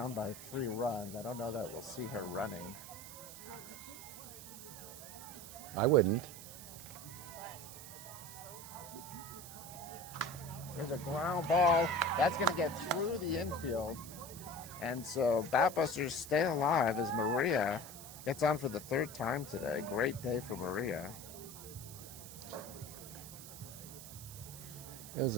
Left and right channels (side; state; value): right; noise; hiss, 13 dB below the sound